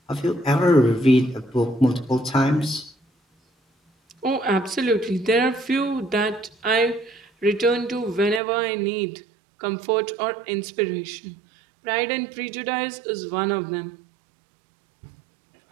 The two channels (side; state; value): left; drops out; at 8.4 s